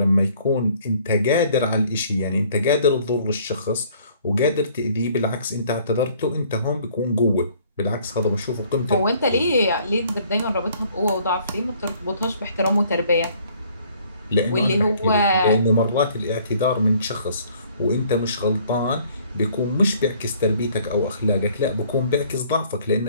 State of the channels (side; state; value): both; inverted; correlation -0.59